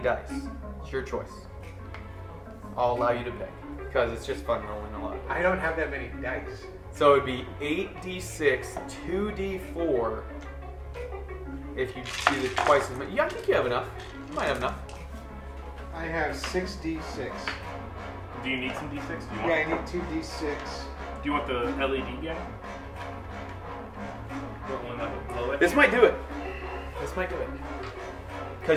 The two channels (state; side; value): identical; both; correlation 1.00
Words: It's your choice. I'll allow you to pick because it's just fun rolling a lot. I don't have that many dice. So it'd be 8d6, 2d4. If you do the twice as many. Yeah, I think you have enough. You might have enough. I have 6d6. Do you need some d6? Do you Yeah, want, I need 2d6. do you want the LED guy? The one that will blow it? This might do it. This might do it.